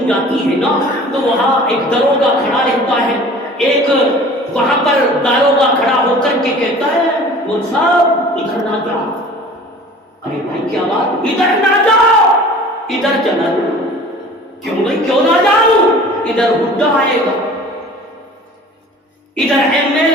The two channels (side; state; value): both; normal; correlation 0.45